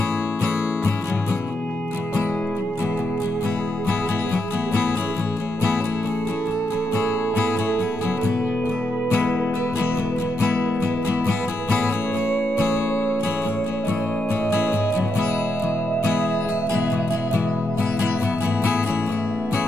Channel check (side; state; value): both; normal; correlation 0.83